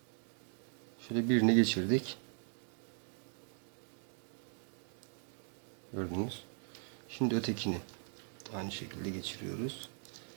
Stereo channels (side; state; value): left; silent; 51 dB below the other